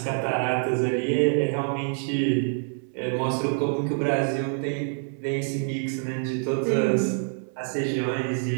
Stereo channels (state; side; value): silent; left; digital silence